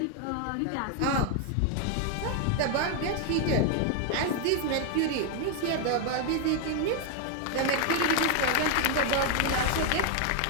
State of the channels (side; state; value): both; different; correlation 0.00